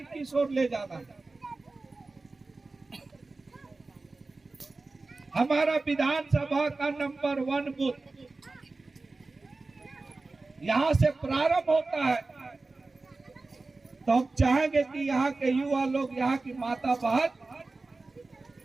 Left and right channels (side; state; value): left; quieter; 3.5 dB